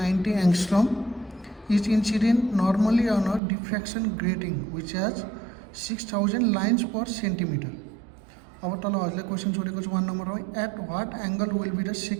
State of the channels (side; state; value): left; drops out; at 3.4 s